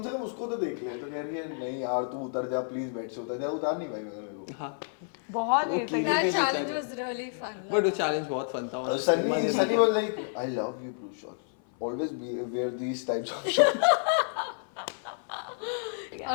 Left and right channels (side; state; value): right; silent; 56 dB below the other